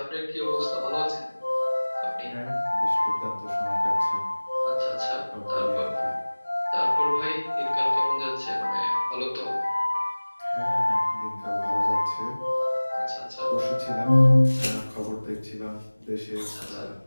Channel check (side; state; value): both; inverted; correlation -1.00